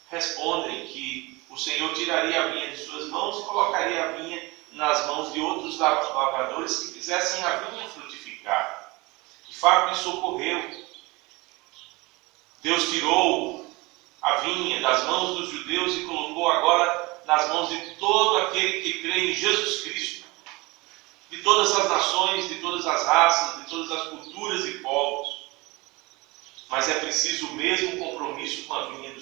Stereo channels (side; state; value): left; quieter; 23.8 dB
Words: respondem que o Senhor tiraria a vinha de suas mãos e colocaria a vinha nas mãos de outros lavradores que fizessem a vinha frutificar. De fato, isso ocorreu. Deus tirou a vinha das mãos dos judeus e colocou agora nas mãos de todo aquele que crê em Jesus Cristo, de todas as nações, de todas as raças, de todas as culturas e povos. Mas é preciso o mesmo compromisso com a vinha